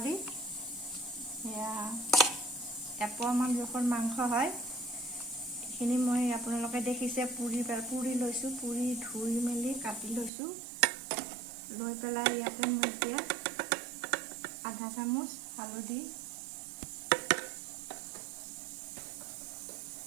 এয়া এপোৱামান জোখৰ মাংস হয়। এইখিনি মই আপোনালোকে দেখিছে পুৰি লৈছোঁ, পুৰি ধুই মেলি কাটি লৈছোঁ। লৈ পেলাই ইয়াতে মই এতিয়া আধা চামুচ হালধি,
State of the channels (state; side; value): drops out; left; at 10.3 s